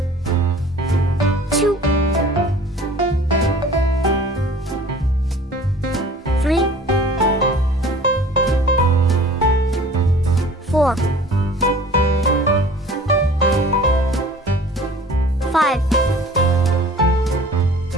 2 3 4 5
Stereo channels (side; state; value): both; normal; correlation 0.47